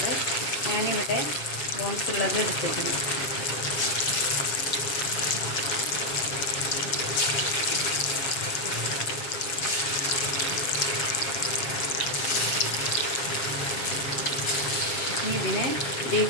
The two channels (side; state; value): right; late; 7.3 ms